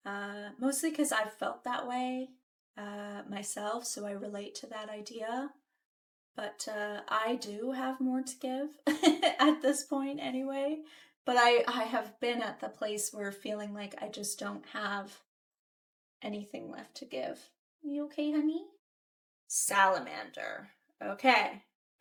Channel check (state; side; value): identical; both; correlation 1.00